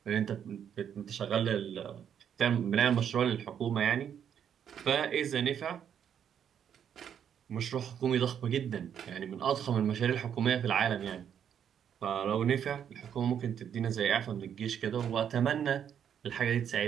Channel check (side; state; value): left; quieter; 8.7 dB